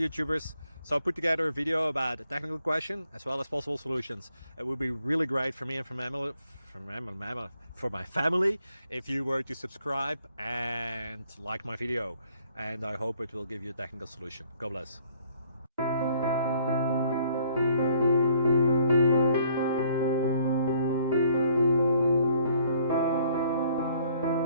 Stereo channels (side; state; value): both; inverted; correlation -0.64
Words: So I put together a video about a technical question as well as possible solutions. It would be really great for me and for my family if you were to subscribe and like my video, and I hope it will give you a technical solution. God bless.